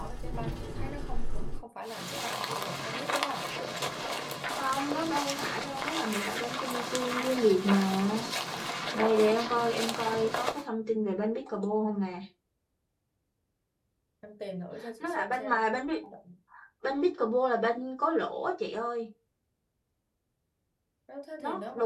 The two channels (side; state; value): both; identical; correlation 1.00